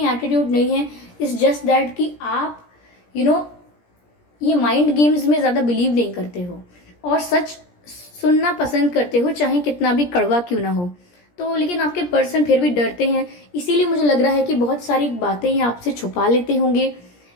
एटीट्यूड नहीं है, इट्स जस्ट दैट कि आप ये माइंड गेम्स में ज़्यादा बिलीव नहीं करते हो और सच सुनना पसंद करते हो, चाहे कितना भी कड़वा क्यों ना हो। तो लेकिन आपके पर्सन फिर भी डरते हैं, इसीलिए मुझे लग रहा है कि बहुत सारी बातें ये आपसे छुपा लेते होंगे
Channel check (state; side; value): late; right; 17 ms